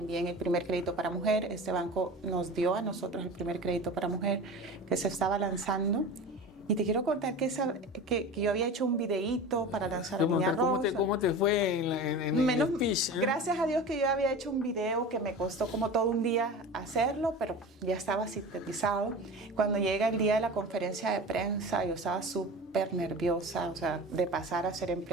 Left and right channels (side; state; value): both; normal; correlation 0.33